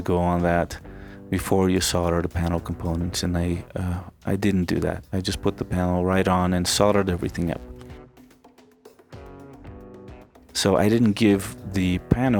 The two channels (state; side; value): identical; both; correlation 1.00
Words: go on that before you solder the panel components, and I didn't do that. I just put the panel right on and soldered everything up. So I didn't give the